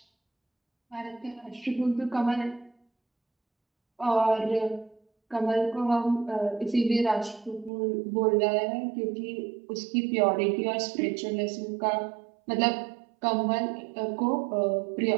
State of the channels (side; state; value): left; drops out; at 7.7 s